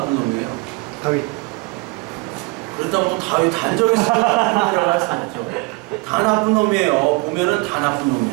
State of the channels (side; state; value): left; quieter; 26.9 dB